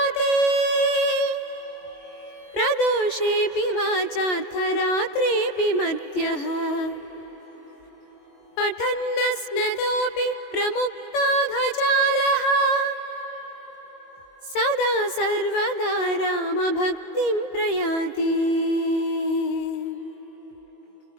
प्रदोषेऽपि वाचार्थरात्रेऽपि मर्त्यः पठन्नस्नतोऽपि प्रमुक्ताघजालः सदा सर्वदा रामभक्तिं प्रयाति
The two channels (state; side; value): late; right; 22 ms